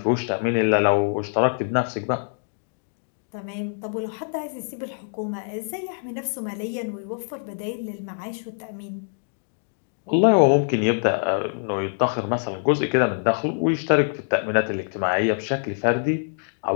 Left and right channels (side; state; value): right; silent; digital silence